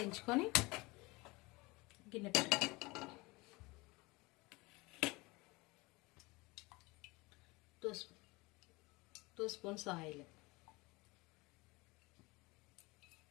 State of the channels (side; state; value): right; quieter; 23.9 dB